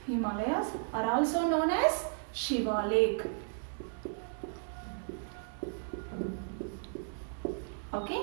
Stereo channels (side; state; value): left; silent; digital silence